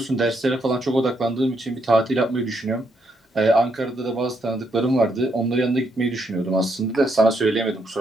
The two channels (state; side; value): normal; both; correlation 0.76